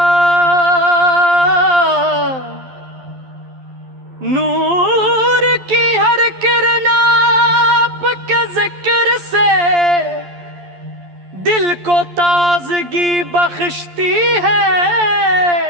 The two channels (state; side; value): late; left; 11 ms